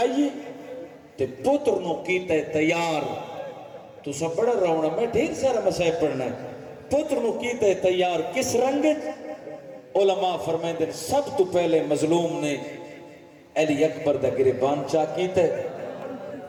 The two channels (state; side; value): identical; both; correlation 1.00